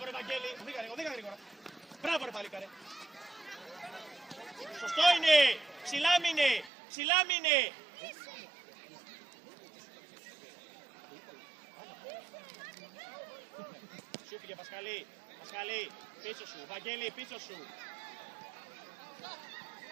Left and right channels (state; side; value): drops out; left; at 6.7 s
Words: ρε Βαγγέλη! Οδήγα γρήγορα! Μπράβο ρε παλίκαρε! Σωστό είναι! Ψηλά μείνε! Ψηλά μείνε! Σου πήγε Πασχαλή! Πασχαλή! Πίσω σου! Βαγγέλη πίσω σου!